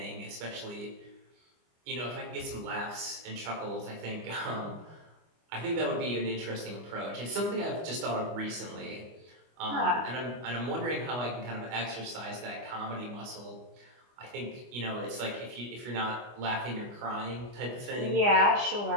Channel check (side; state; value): left; late; 25 ms